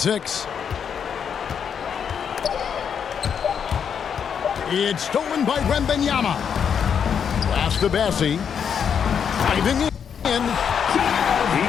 It's stolen by Wembanyama. Pass to Bassi. Driving in. He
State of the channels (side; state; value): right; quieter; 7.5 dB